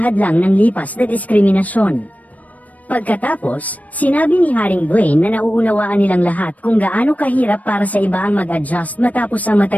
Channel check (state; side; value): late; right; 0.072 ms